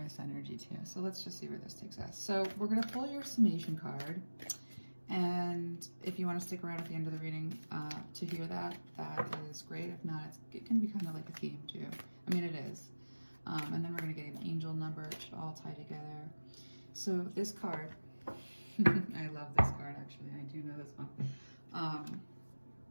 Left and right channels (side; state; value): both; inverted; correlation -1.00